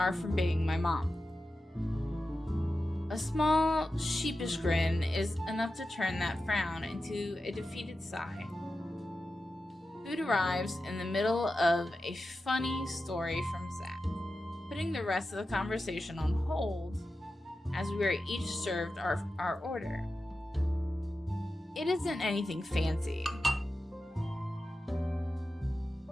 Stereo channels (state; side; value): normal; both; correlation 0.92